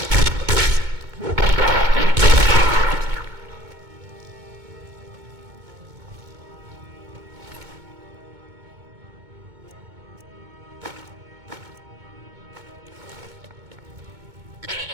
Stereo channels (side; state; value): left; late; 2.2 ms